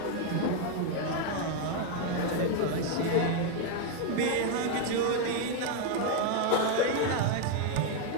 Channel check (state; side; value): different; both; correlation 0.01